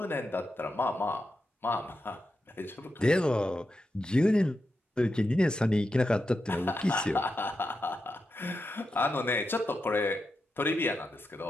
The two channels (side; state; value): both; normal; correlation 0.88